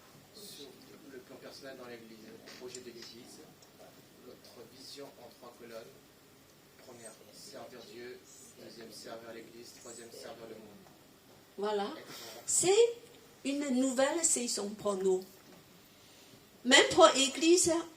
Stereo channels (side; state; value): both; identical; correlation 1.00